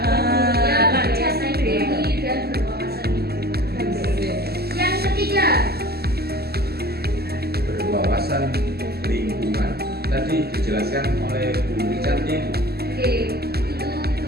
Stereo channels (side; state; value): left; late; 0.46 ms